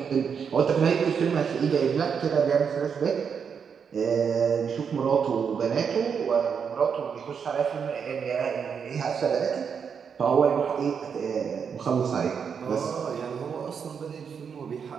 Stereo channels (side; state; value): left; quieter; 6.7 dB